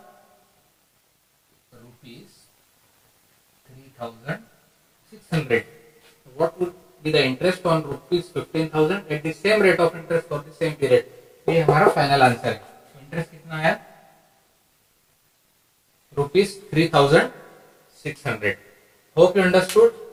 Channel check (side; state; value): both; identical; correlation 1.00